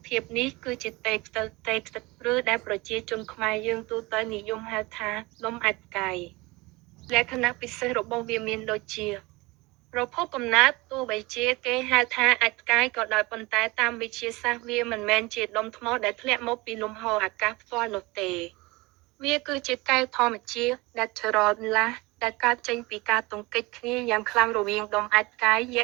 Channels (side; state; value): left; quieter; 23.0 dB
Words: ភាពនេះគឺជាតេខ្ទិតឬដែលប្រជាជនខ្មែរយើងទូទៅនិយមហៅថាដុំអាចកាយលក្ខណៈពិសេសរបស់វាមានដូចជាប្រភពកំណើតទោះបីជាគេហៅថាអាចកាយក៏ដោយប៉ុន្តែតាមវិទ្យាសាស្ត្រវាមិនមែនជាដុំថ្មដែលធ្លាក់មកពីលំហអាកាសផ្ទាល់នោះទេវាគឺជាកែវធម្មជាតិ natural ដែលកើតចេញពីការទង្គិចគ្នាយ៉ាងខ្លាំងរវាងដុំអាចកាយយ